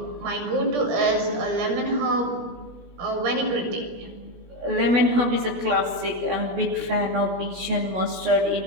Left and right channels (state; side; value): late; left; 16 ms